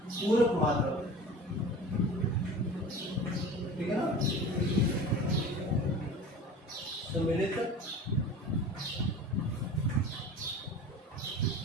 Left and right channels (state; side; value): normal; both; correlation 0.38